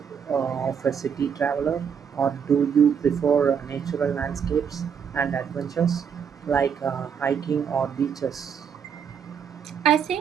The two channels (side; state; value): left; quieter; 7.3 dB